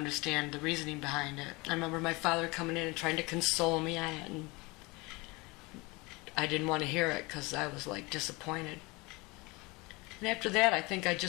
the reasoning behind it. I remember my father coming in and trying to console me on it, and I didn't want to hear it because I was like disappointed. And after that, I think I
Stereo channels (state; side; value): quieter; right; 24.9 dB